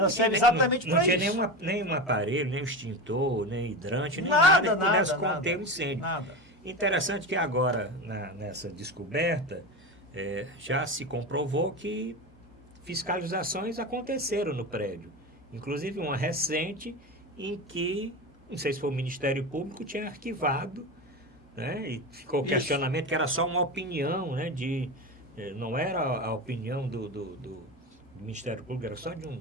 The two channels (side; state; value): both; normal; correlation 0.23